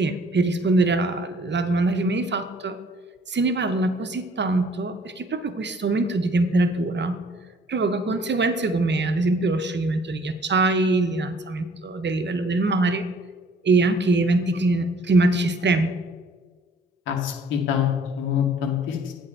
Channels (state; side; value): normal; both; correlation 0.57